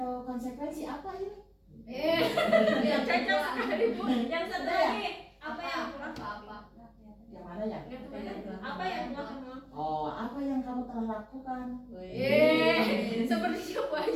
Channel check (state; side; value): identical; both; correlation 1.00